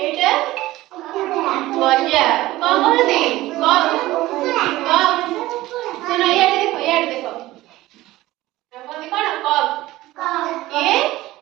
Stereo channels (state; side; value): quieter; left; 17.2 dB